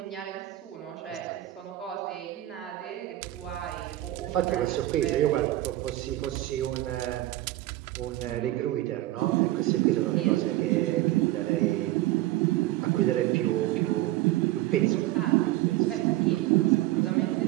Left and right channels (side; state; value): left; quieter; 16.2 dB